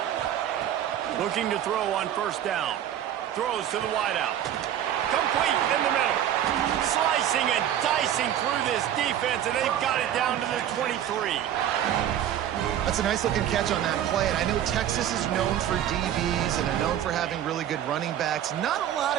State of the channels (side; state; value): left; quieter; 10.8 dB